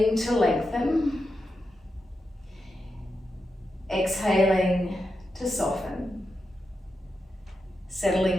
to lengthen, exhaling to soften.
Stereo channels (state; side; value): normal; both; correlation 0.87